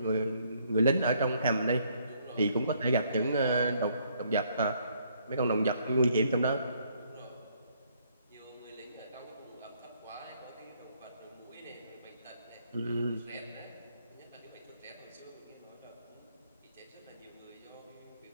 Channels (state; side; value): inverted; both; correlation -0.68